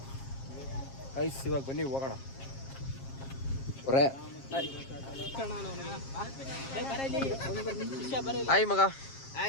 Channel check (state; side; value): late; right; 7.4 ms